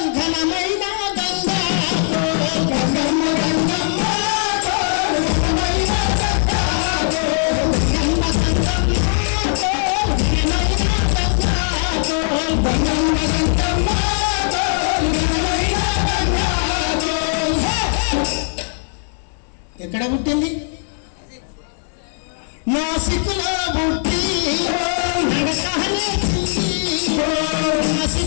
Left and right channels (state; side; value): silent; right; 66 dB below the other